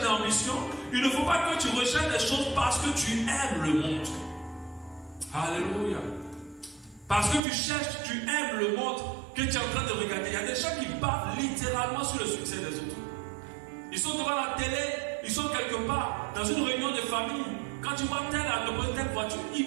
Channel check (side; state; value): left; drops out; at 7.4 s